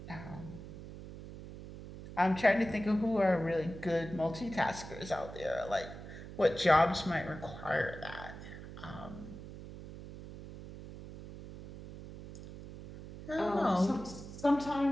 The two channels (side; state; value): right; noise; hum, 13 dB below the sound